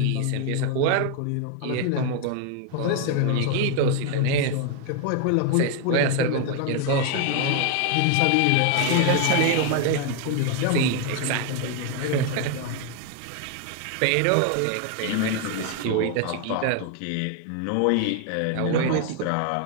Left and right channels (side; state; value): both; different; correlation 0.01